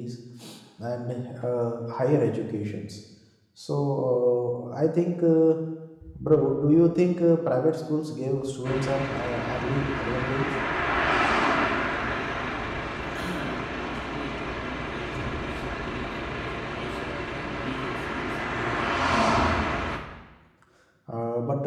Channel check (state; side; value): identical; both; correlation 1.00